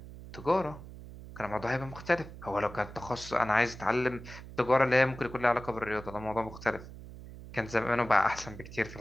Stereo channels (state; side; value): noise; right; hum, 14 dB below the sound